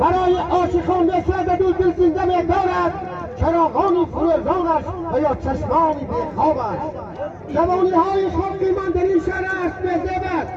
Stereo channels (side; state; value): both; identical; correlation 1.00